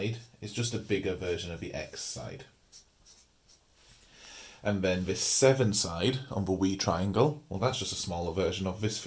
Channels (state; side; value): identical; both; correlation 1.00